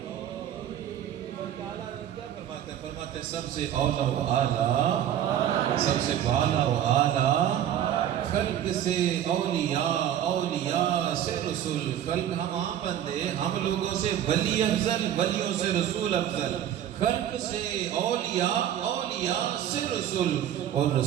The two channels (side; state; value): left; quieter; 10.7 dB